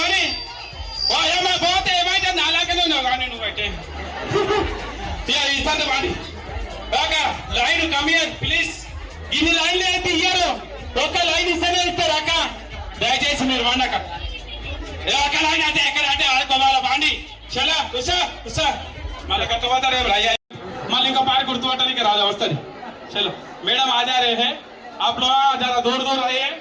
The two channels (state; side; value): identical; both; correlation 1.00